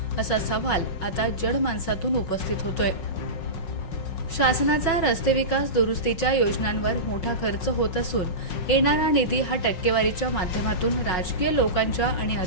असा सवाल आता जनमानसातून उपस्थित होतोय। शासनाचा रस्ते विकास दुरुस्तीच्या योजनांवर मोठा खर्च होत असून येणारा निधी हा टक्केवारीच्या माध्यमातून राजकीय लोकांच्या आणि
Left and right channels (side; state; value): right; late; 5.5 ms